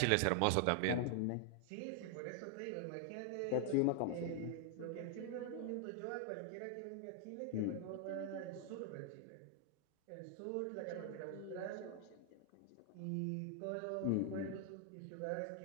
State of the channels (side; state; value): both; different; correlation 0.00